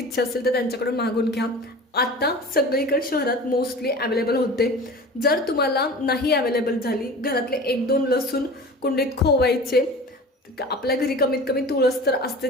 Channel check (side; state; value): both; normal; correlation 0.37